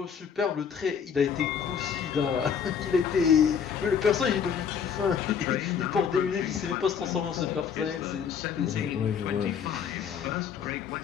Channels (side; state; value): right; quieter; 7.2 dB